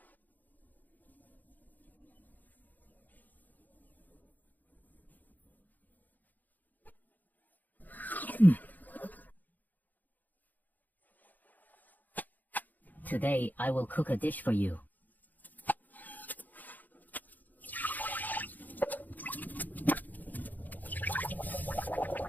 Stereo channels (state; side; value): late; right; 0.084 ms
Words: Today, I will cook a dish for you.